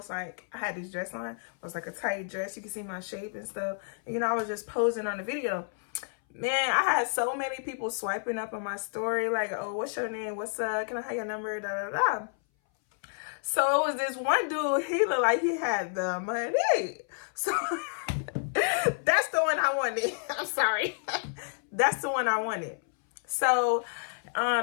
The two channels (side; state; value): right; silent; 58 dB below the other